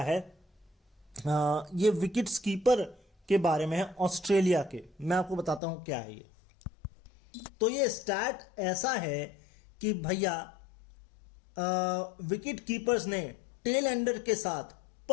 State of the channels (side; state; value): right; drops out; at 5.6 s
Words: है। ये विकेट्स कीपर के बारे में है ऑस्ट्रेलिया के। मैं आपको बताता हूं क्या है ये। तो ये स्टैट ऐसा है कि भैया विकेट कीपर्स ने टेल एंडर के साथ